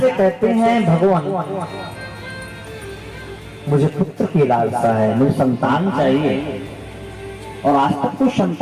कहते हैं, भगवान मुझे पुत्र की लालसा है, मुझे संतान चाहिए और आज तक कोई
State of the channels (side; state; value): both; identical; correlation 1.00